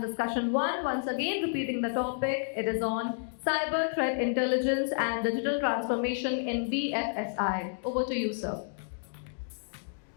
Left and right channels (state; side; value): silent; right; digital silence